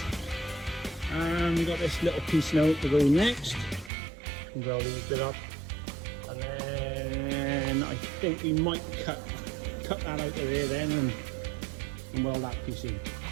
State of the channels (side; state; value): left; drops out; at 3.9 s